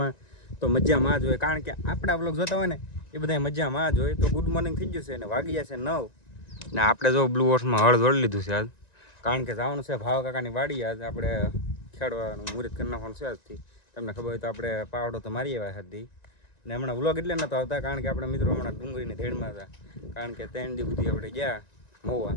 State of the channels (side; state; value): right; late; 1.9 ms